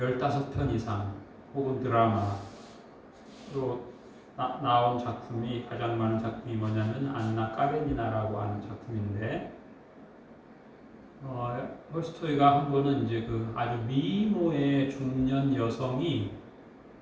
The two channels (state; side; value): identical; both; correlation 1.00